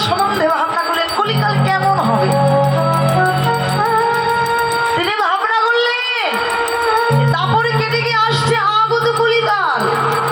সম্বন্ধে ভাবনা করলেন, কলিকাল কেমন হবে। তিনি ভাবনা করলেন দাপর কেটে গিয়ে আসছে আগত কলিকাল।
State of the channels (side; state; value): both; identical; correlation 1.00